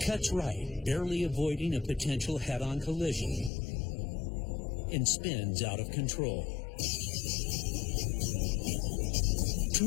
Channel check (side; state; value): right; drops out; at 3.5 s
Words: cuts right, barely avoiding a potential head-on collision, and spins out of control.